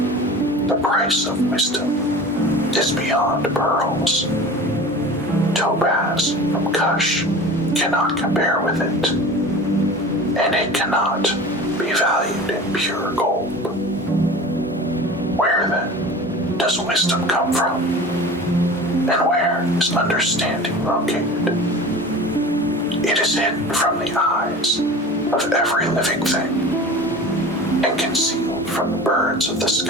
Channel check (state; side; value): normal; both; correlation 0.37